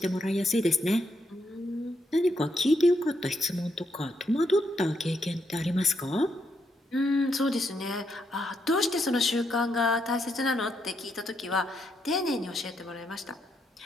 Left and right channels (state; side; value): normal; both; correlation 0.78